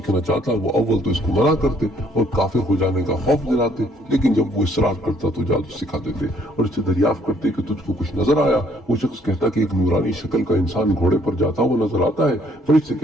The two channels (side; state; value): both; normal; correlation 0.64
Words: چاہتا وہ اول تو اس کو منع کرتے اور کافر ہو جانے کا خوف دلاتے، لیکن جب وہ اصرار کرتا تو جادو سکھا دیتے اور اس سے دریافت کرتے کہ تجھ کو کچھ نظر آیا۔ وہ شخص کہتا کہ ایک نورانی شکل کا انسان گھوڑے پر جاتا وہ نظر آتا ہے۔ فرشتے